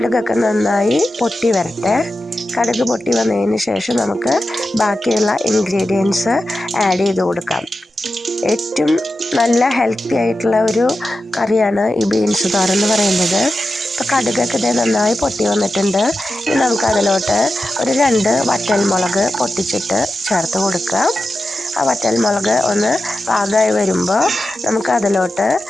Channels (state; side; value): normal; both; correlation 0.92